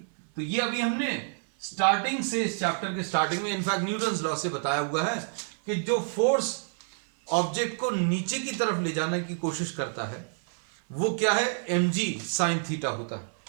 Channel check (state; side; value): silent; left; 59 dB below the other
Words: तो ये अभी हमने स्टार्टिंग से, इस चैप्टर के स्टार्टिंग में इनफैक्ट न्यूटन्स लॉ से बताया हुआ है कि जो फोर्स ऑब्जेक्ट को नीचे की तरफ ले जाने की कोशिश करता है वो क्या है, mg sin थीटा होता